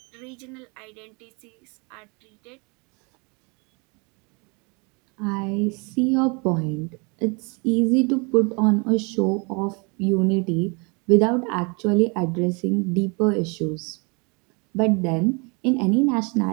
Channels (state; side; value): quieter; left; 31.6 dB